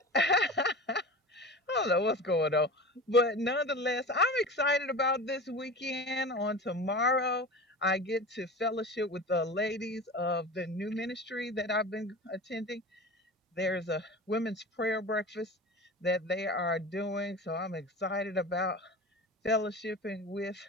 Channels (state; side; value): normal; both; correlation 0.32